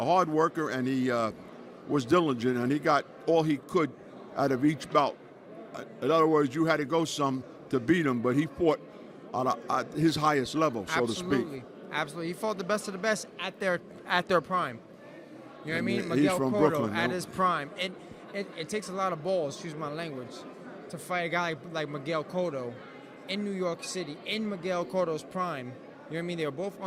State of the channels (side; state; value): both; identical; correlation 1.00